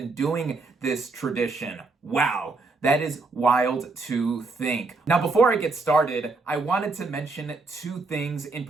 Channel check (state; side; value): quieter; left; 3.7 dB